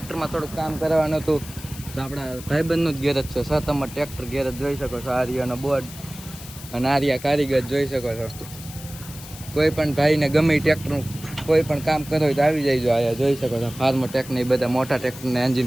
થોડુંક કામ કરવાનું હતું. તો આપણા ભાઈબંધનું જ ગેરેજ છે, સતમ ટ્રેક્ટર ગેરેજ જોઈ શકો છો. આર્યાનો બોર્ડ અને આર્યા કારીગર જોઈ શકો છો. કોઈ પણ ભાઈને ગમે ટ્રેક્ટરનું કોઈ પણ કામ કરો હોય તો આવી જાય. જો આયા જોઈ શકો છો ફાર્મર ટેકને બધા મોટા ટ્રેક્ટરના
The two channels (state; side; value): noise; left; hiss, 15 dB below the sound